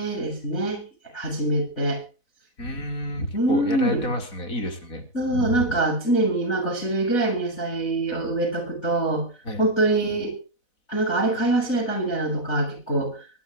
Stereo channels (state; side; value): late; right; 4.0 ms